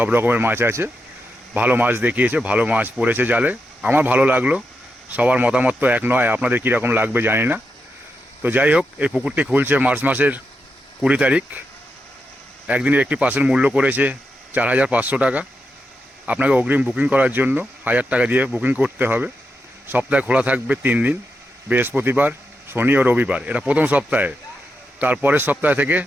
রকমের মাছ আছে। ভালো মাছ দেখিয়েছে, ভালো মাছ পড়েছে জালে, আমার ভালো লাগলো। সবার মতামত তো এক নয়, আপনাদের কীরকম লাগবে জানি না। তো যাই হোক, এই পুকুরটি খুলছে মার্চ মাসের 20 তারিখ। একদিনের একটি পাসের মূল্য করেছে 4500 টাকা। আপনাকে অগ্রিম বুকিং করার জন্য 1000 টাকা দিয়ে বুকিং করতে হবে। সপ্তাহে খোলা থাকবে 3 দিন, বৃহস্পতিবার, শনি ও রবিবার। এটা প্রথম সপ্তাহে। তারপরের সপ্তাহ থেকে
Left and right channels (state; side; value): normal; both; correlation 0.86